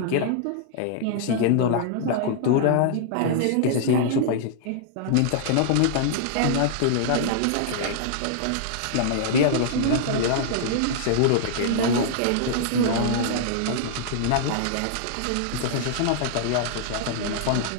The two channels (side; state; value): both; different; correlation -0.01